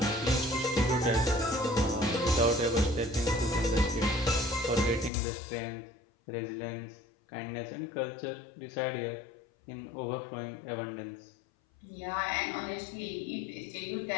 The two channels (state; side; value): drops out; right; at 5.1 s